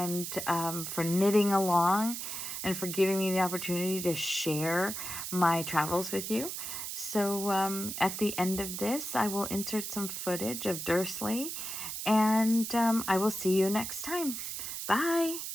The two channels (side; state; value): right; noise; hiss, 5 dB below the sound